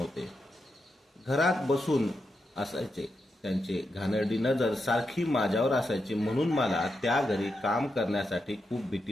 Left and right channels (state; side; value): normal; both; correlation 0.86